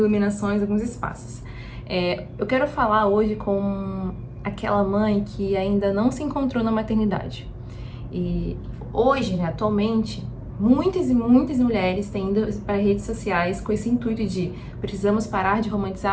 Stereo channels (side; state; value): both; identical; correlation 1.00